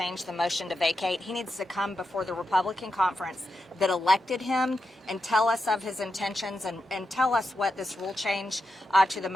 the motion to vacate, he needs to come before the Republican conference that elected him and tell us of his intentions and tell us what this rule change to the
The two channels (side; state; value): both; normal; correlation 0.87